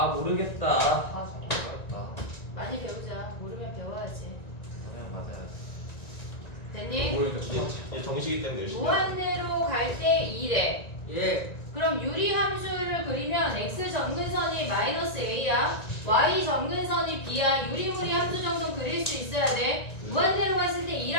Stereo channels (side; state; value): right; late; 1.9 ms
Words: 모르겠다. 아 잠깐. 많이 배우자. 모르면 배워야지. 그냥 맞아요. 됐니? 모르니까 이제 정식이 때문에 열심히 무한대로 갈 때 2래. 예. 그럼 유리함수를 그리면 x 점근선이 마이너스 a야. y 점근선이 b야. 유리무리 함수 정도 그릴 수 있어야 돼. 무한대로 갔을 때